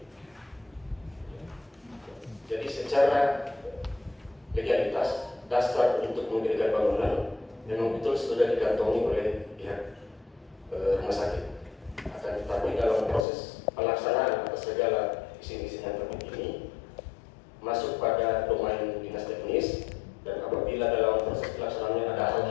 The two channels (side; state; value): right; drops out; at 13.2 s